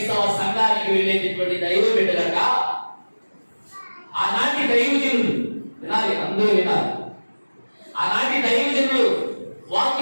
సంఘానికి వెళ్ళేటటువంటి దైవ బిడ్డలక ఆనాటి దైవజనులు వినాలి, అందరూ వినాలి. ఆనాటి దైవజనులు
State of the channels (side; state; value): both; inverted; correlation -1.00